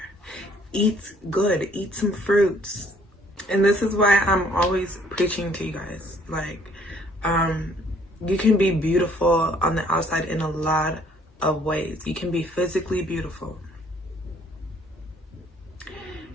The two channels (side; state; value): both; normal; correlation 0.62